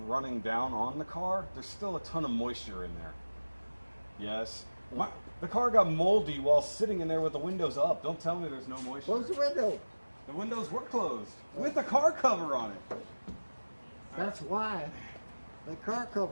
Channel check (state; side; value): inverted; both; correlation -1.00